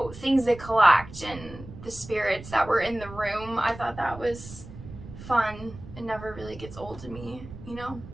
things they collect and the spirits that were in the room. I thought that was fun. It never really gets old to me, you know.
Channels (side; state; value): right; noise; rumble, 14 dB below the sound